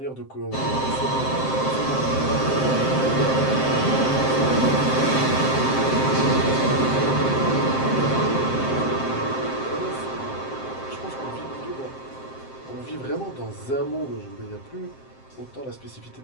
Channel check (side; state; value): right; late; 7.6 ms